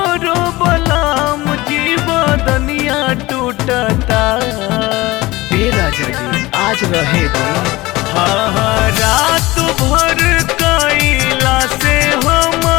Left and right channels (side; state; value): right; quieter; 19.9 dB